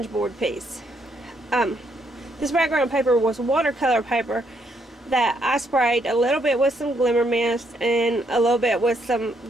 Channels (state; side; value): normal; both; correlation 0.74